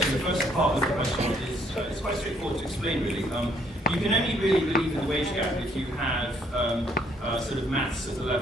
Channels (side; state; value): both; normal; correlation 0.67